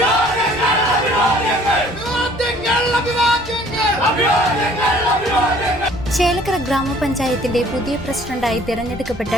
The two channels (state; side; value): normal; both; correlation 0.55